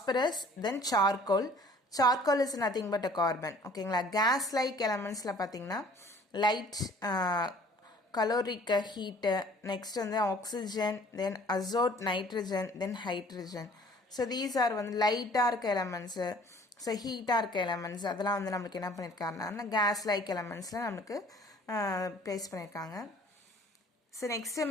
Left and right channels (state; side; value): normal; both; correlation 0.53